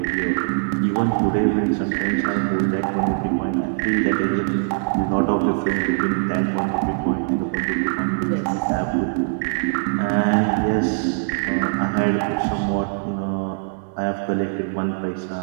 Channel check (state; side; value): silent; left; digital silence